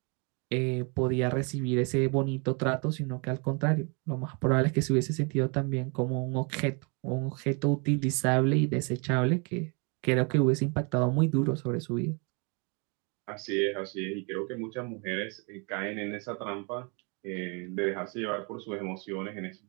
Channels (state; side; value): quieter; left; 33.7 dB